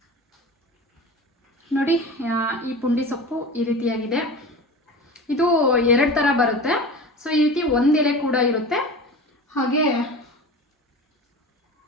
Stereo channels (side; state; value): both; normal; correlation 0.33